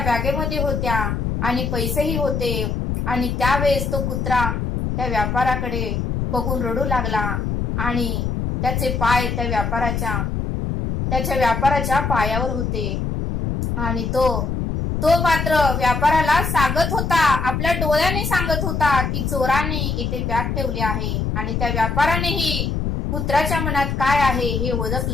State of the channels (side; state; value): left; noise; rumble, 1 dB below the sound